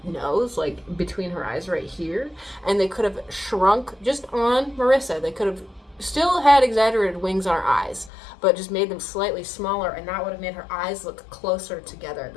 nose, like between her eyes right here, and they could have shrunk just on Marisa. They could have still had exaggerated wings on her eyes, but just made them slightly smaller, and that would have made her eyes look closer together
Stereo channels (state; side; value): drops out; right; at 8.1 s